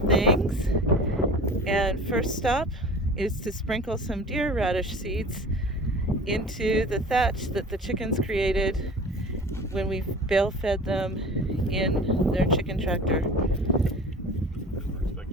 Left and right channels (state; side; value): normal; both; correlation 0.40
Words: and first stop is to sprinkle some deer radish seeds into the thatch that the chickens created when we bale fed them in their chicken tractor.